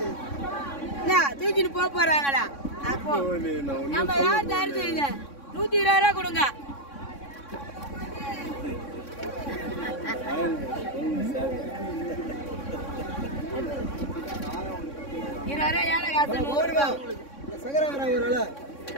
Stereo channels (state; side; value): late; right; 3.6 ms